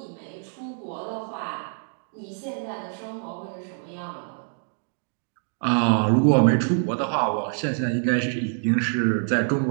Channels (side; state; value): left; silent; 60 dB below the other